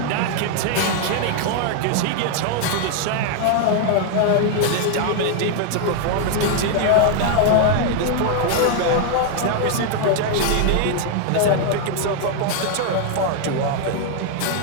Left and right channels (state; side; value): different; both; correlation 0.00